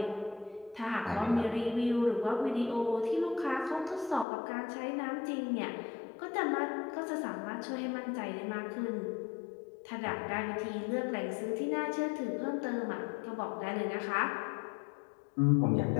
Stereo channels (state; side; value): drops out; right; at 4.2 s